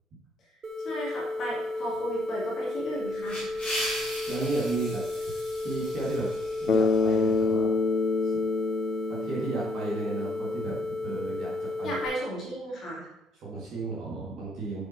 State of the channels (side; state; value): both; normal; correlation 0.69